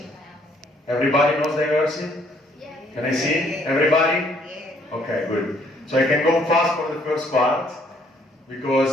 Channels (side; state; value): both; normal; correlation 0.65